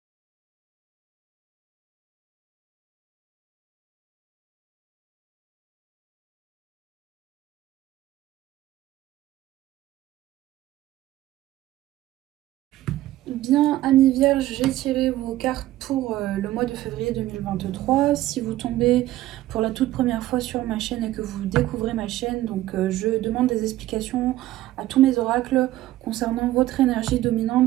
Bien, amis vierges, j'ai tiré vos cartes pour le mois de février 2023. Si vous tombez pour la toute première fois sur ma chaîne et que vous découvrez ma chaîne, donc je demande des explications à tous mes oracles concernant votre énergie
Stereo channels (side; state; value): left; quieter; 15.3 dB